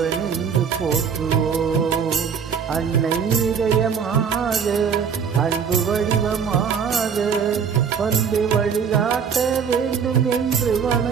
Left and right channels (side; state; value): left; quieter; 6.8 dB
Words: என்று போற்றுவோம். அன்னை இதயமாக அன்பு வடிவமாக வந்து வழிகாட்ட வேண்டும் என்று